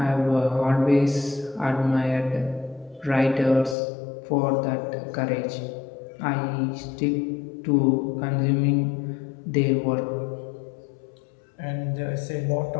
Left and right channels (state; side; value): drops out; right; at 3.8 s